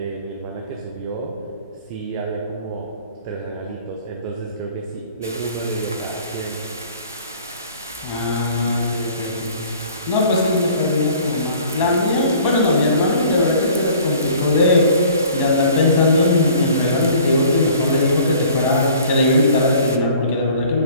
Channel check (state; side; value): inverted; both; correlation -0.51